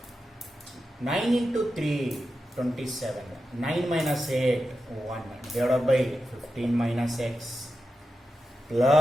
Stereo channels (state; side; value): normal; both; correlation 0.90